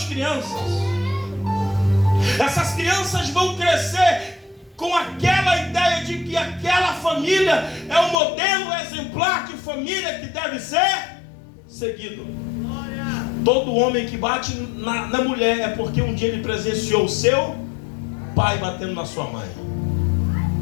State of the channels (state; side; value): drops out; right; at 8.2 s